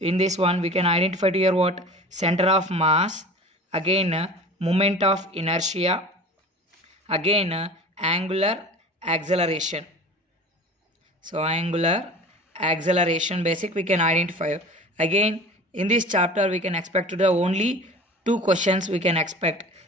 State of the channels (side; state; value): both; normal; correlation 0.39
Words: this one we can identify to here what center of mass, again moment of inertia, again angular acceleration. So angular acceleration basic we can identify. Again in this chapter we can expect to the only 2 questions we can expect.